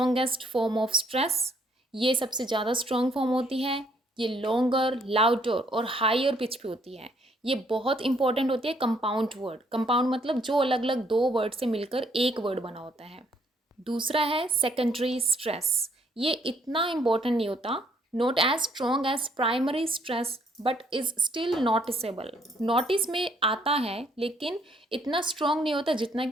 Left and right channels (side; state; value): both; normal; correlation 0.67